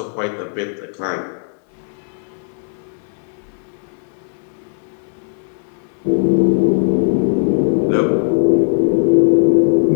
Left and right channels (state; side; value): silent; right; 67 dB below the other